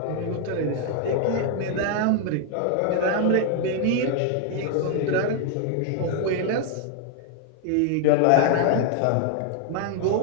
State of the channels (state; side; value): different; both; correlation 0.00